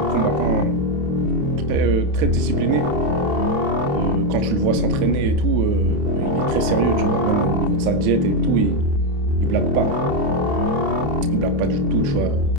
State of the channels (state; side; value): late; left; 28 ms